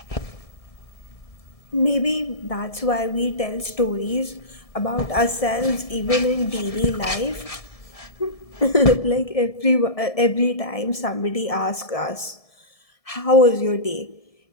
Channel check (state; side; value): late; right; 1.7 ms